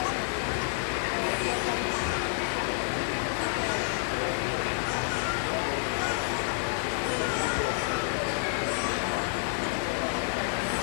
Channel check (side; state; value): right; silent; digital silence